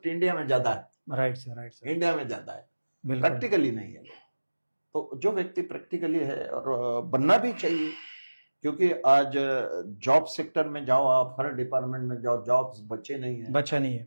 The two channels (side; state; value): both; inverted; correlation -1.00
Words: इंडिया में ज्यादा है, right sir, right sir. India में ज्यादा है, बिल्कुल। प्रैक्टिकली नहीं है। तो जो व्यक्ति प्रैक्टिकली है, और बनना भी चाहिए, क्योंकि आज जॉब सेक्टर में जाओ, आप हर डिपार्टमेंट में जाओ, जॉब्स बचे नहीं है। बचा नहीं है।